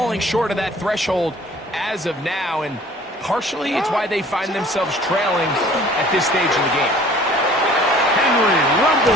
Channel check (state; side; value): normal; both; correlation 0.51